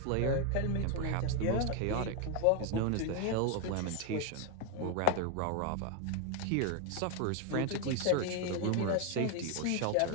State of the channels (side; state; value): both; different; correlation 0.01